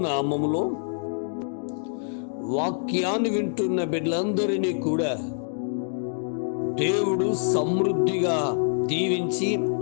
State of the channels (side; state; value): right; silent; digital silence